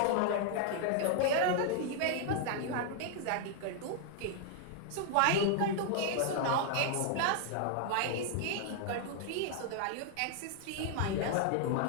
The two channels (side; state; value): both; different; correlation 0.00